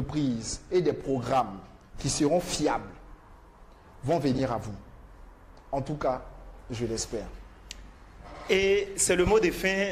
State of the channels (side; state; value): both; identical; correlation 1.00